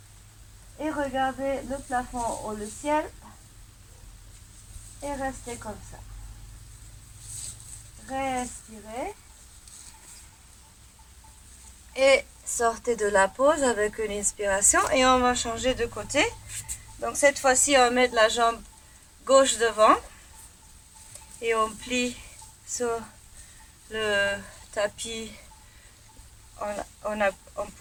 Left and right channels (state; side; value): identical; both; correlation 1.00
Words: Et regardez le plafond ou le ciel. Et restez comme ça. Respirez. Et sortez de la pause avec une inspiration. Et on va changer de côté. Donc cette fois-ci, on met la jambe gauche devant. Et on plie sur le tapis. On